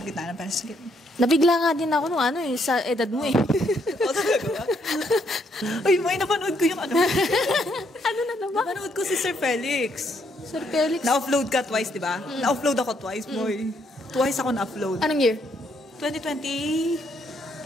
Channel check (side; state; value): both; normal; correlation 0.72